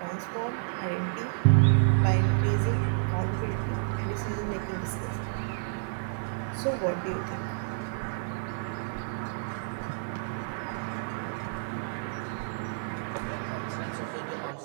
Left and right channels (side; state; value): left; silent; 58 dB below the other